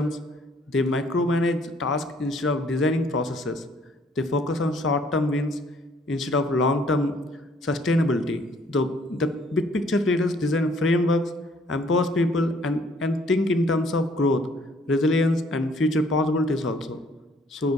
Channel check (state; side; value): normal; both; correlation 0.61